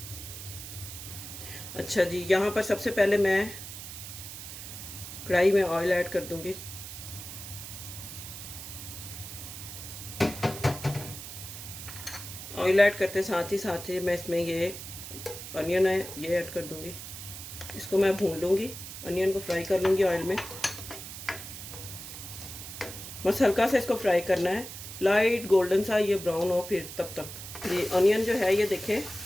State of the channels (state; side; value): noise; right; hiss, 11 dB below the sound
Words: अच्छा जी, यहाँ पर सबसे पहले मैं कढ़ाई में ऑयल ऐड कर दूंगी। ऑयल ऐड करते साथ ही मैं इसमें ये अनियन है ये ऐड कर दूंगी। इसको मैं भून लूँगी, अनियन को फ्राई कर लूँगी ऑयल में। बस हल्का सा इसको फ्राई करना है, लाइट गोल्डन सा ये ब्राउन हो फिर तब तक। ये अनियन जो है ये देखें